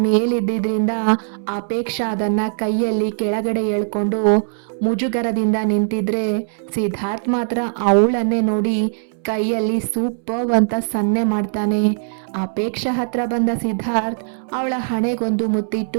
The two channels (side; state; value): left; silent; 66 dB below the other